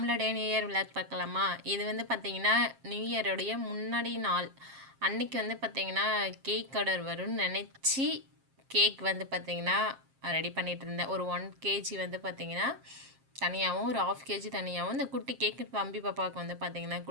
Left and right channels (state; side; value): late; left; 7.5 ms